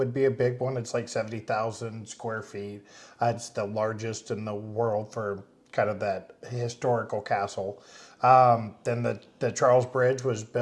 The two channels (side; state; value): both; identical; correlation 1.00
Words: be a big one. It's like 70,000 square feet. It's the largest in the world for kind of that historical castle. Then the Charles Bridge was